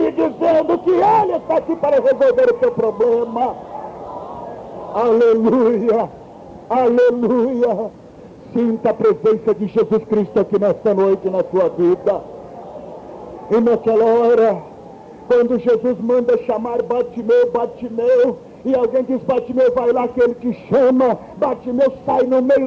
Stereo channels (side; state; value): both; identical; correlation 1.00